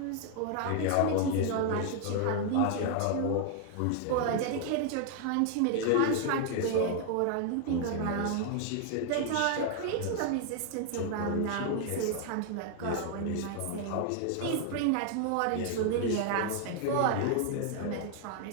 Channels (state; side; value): different; both; correlation 0.00